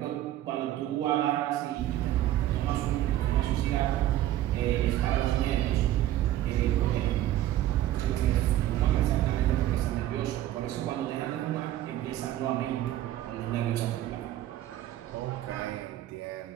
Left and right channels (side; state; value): left; quieter; 13.6 dB